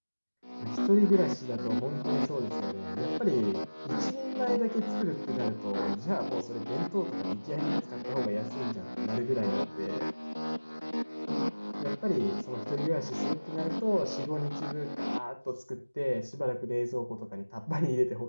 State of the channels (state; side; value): inverted; both; correlation -1.00